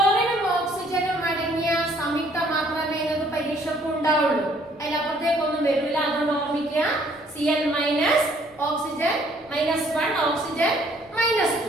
ഓക്സിജനും അടങ്ങിയ സംയുക്തം മാത്രമേ നിങ്ങൾക്ക് പരീക്ഷയ്ക്ക് ഉണ്ടാവുള്ളൂ, അതിലപ്പുറത്തേക്കൊന്നും വരില്ല. അതുകൊണ്ട് ഓർമ്മിക്കുക, Cl ഓക്സിജൻ -1, ഓക്സിജൻ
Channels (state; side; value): noise; left; rumble, 29 dB below the sound